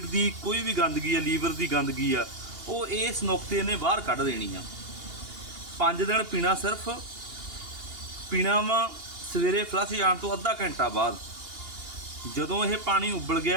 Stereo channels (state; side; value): late; left; 2.8 ms